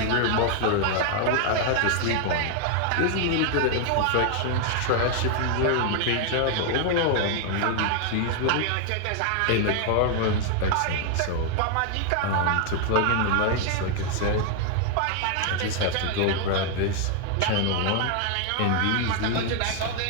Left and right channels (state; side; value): different; both; correlation 0.00